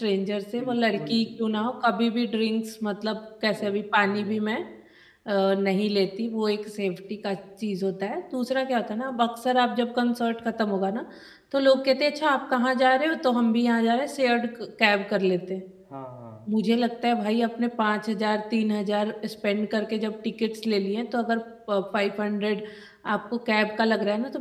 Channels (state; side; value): identical; both; correlation 1.00